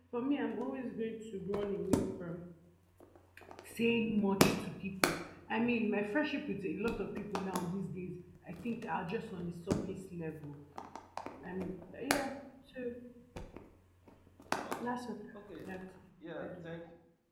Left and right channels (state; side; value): identical; both; correlation 1.00